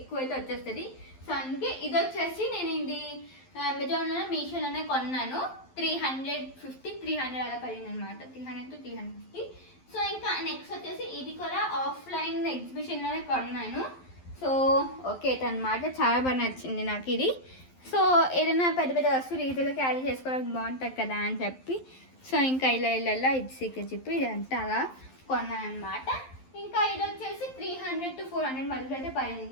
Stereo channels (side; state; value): right; late; 11 ms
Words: అయితే వచ్చేస్తుంది. సో అందుకే ఇది వచ్చేసి నేను ఇది అమెజాన్లో మీషోలోనే కొన్నాను. 350-300 అలా పడింది అనమాట. 300-350. సో ఇంకా నెక్స్ట్ వచ్చేసి ఇది కూడా ఆఫ్లైన్ ఎగ్జిబిషన్లోనే కొన్నాను. సో ఓకే అనమాట, చాలా బాగా నచ్చింది నాకు ఇది. సో ఏదైనా పెద్ద పెద్ద వస్తువులు ఈజీగా క్యారీ చేసుకోవడానికి బాగుంటుంది కదా అని చెప్పి సో ఇంకా ఇలా ఇది సీక్రెట్ జిప్ ఇదంతా అలా కొన్నాను అనమాట. ఇంకా ఇది వచ్చేసి 300-400 మధ్యలో అయితే